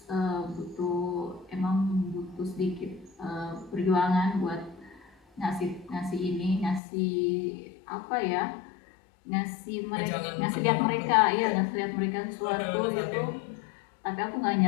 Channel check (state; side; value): drops out; right; at 6.8 s